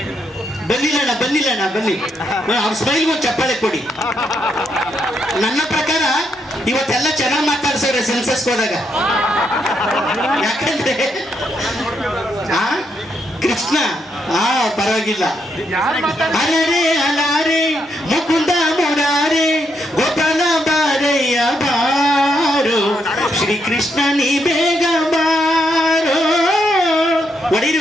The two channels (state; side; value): normal; both; correlation 0.78